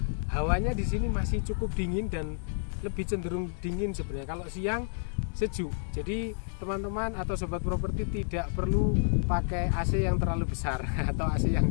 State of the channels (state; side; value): silent; right; 58 dB below the other